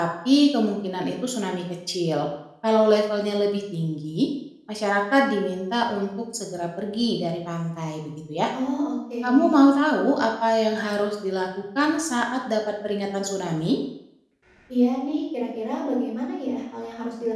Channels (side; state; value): both; identical; correlation 1.00